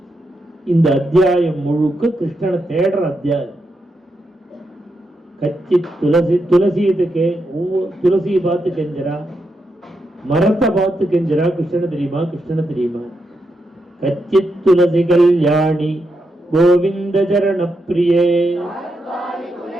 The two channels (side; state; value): both; normal; correlation 0.83